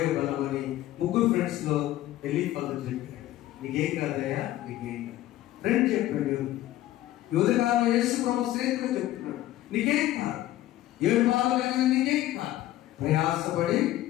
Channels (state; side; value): quieter; right; 14.6 dB